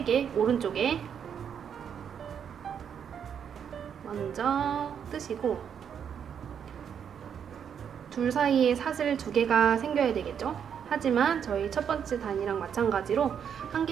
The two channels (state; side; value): quieter; left; 7.9 dB